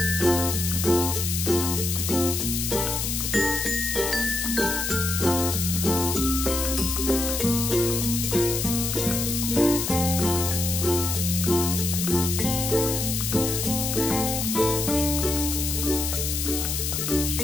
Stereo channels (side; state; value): left; noise; hiss, 1 dB below the sound